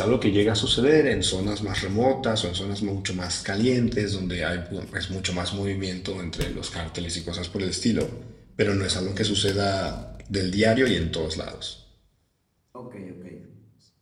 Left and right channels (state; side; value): identical; both; correlation 1.00